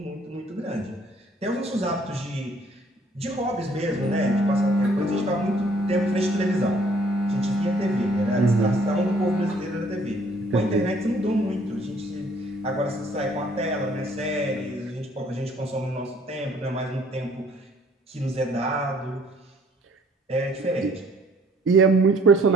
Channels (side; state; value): both; normal; correlation 0.60